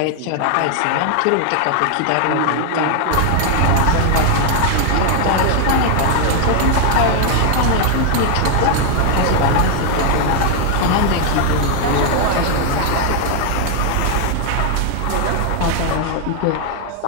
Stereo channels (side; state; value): both; different; correlation 0.00